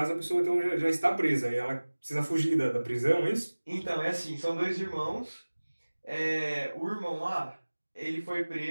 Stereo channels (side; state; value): both; inverted; correlation -1.00